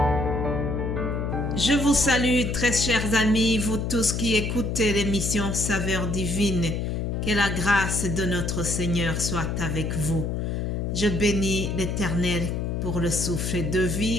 Je vous salue, très chers amis, vous tous qui écoutez l'émission Saveur divine. Que la grâce de notre Seigneur soit avec vous. Je bénis l'Éternel pour le souffle de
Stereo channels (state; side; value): noise; left; hum, 1 dB below the sound